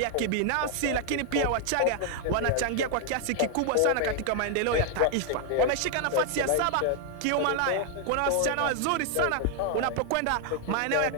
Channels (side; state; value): both; different; correlation 0.00